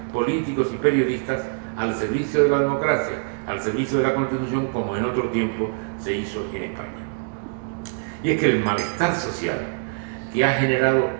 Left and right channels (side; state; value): left; silent; 61 dB below the other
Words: políticos y periodistas al servicio de la democracia, al servicio de la Constitución, como en otro tiempo se hizo en España. Y es que el malestar social que ha generado